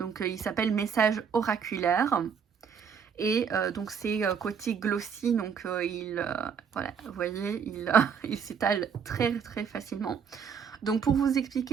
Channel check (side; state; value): left; quieter; 6.8 dB